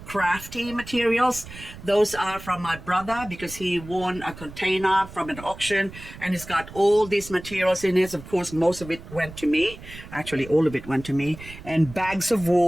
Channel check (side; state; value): right; noise; rumble, 15 dB below the sound